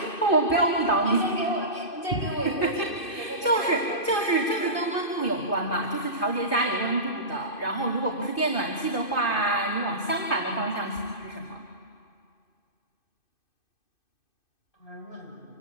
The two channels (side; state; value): right; late; 2.6 ms